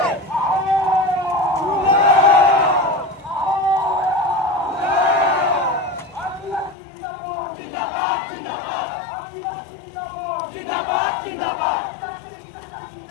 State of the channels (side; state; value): right; drops out; at 6.8 s